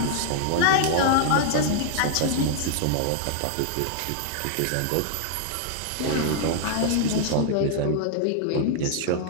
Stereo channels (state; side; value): different; both; correlation -0.01